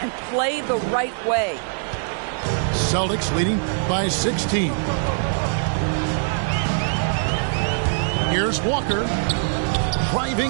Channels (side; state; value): left; silent; digital silence